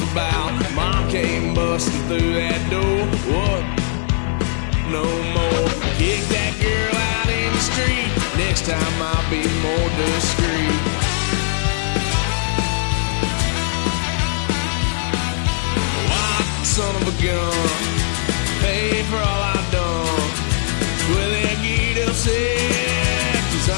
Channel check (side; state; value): right; silent; 57 dB below the other